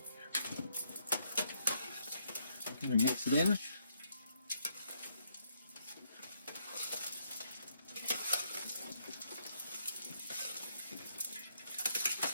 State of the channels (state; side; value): inverted; both; correlation -0.74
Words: I'm going to mix it in.